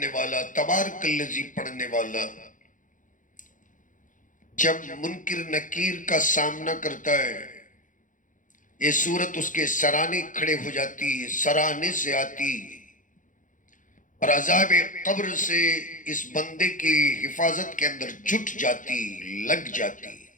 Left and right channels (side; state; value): right; late; 0.38 ms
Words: والا، تبارک الذی پڑھنے والا، جب منکر نکیر کا سامنا کرتا ہے، یہ سورت اس کے سرانے کھڑے ہو جاتی، سرانے سے آتی اور عذاب قبر سے اس بندے کی حفاظت کے اندر جٹ جاتی، لگ جاتی.